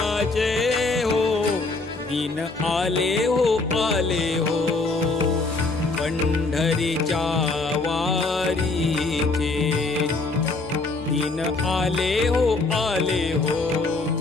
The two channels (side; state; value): right; quieter; 3.5 dB